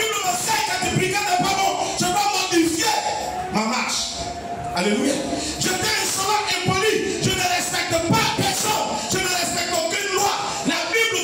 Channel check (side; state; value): both; identical; correlation 1.00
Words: m'enseigne que être brigand n'est pas bon. Je dois modifier ma marche. Alléluia. J'étais insolent, impoli. Je ne respecte pas personne. Je ne respecte aucune loi. La